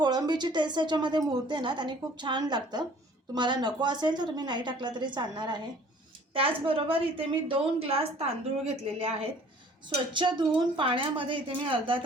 टेस्ट त्याच्यामध्ये मुरते ना त्याने खूप छान लागतं. तुम्हाला नको असेल तर तुम्ही नाही टाकला तरी चालणार आहे. त्याचबरोबर इथे मी 2 ग्लास तांदूळ घेतलेले आहेत. स्वच्छ धुवून पाण्यामध्ये इथे मी अर्धा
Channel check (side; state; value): both; normal; correlation 0.53